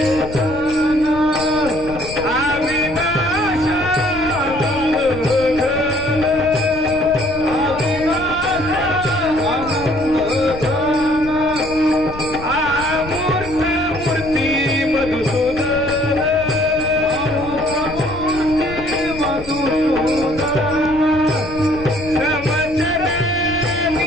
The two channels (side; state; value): left; noise; rumble, 13 dB below the sound